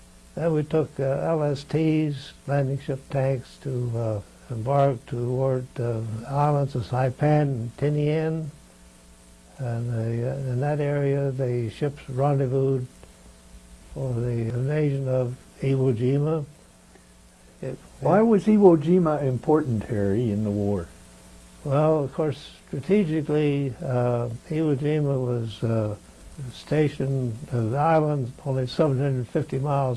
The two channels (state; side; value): identical; both; correlation 1.00